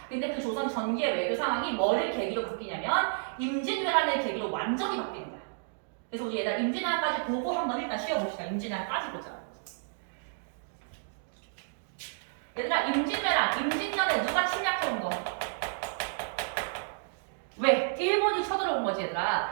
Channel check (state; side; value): silent; left; digital silence